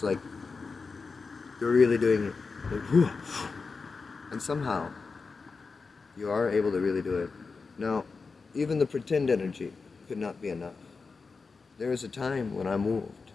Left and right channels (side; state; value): right; quieter; 4.6 dB